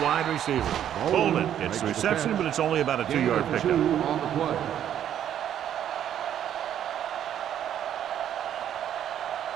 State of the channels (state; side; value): quieter; left; 10.2 dB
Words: receiver. Bolden gets the reception, but it's only about a 2-yard pickup. On the play.